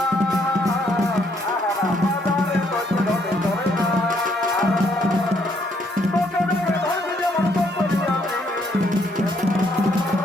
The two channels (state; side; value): normal; both; correlation 0.70